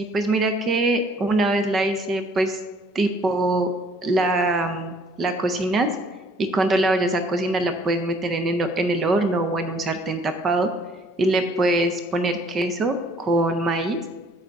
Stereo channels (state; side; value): normal; both; correlation 0.59